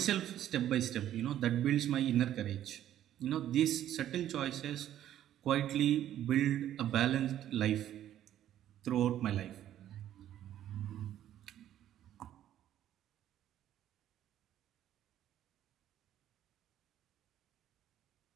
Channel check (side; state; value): left; quieter; 11.7 dB